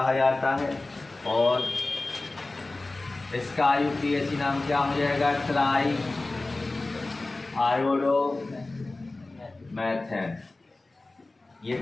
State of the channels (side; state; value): right; quieter; 3.1 dB